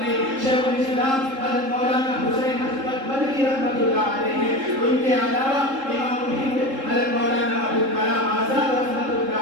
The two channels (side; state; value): left; late; 3.7 ms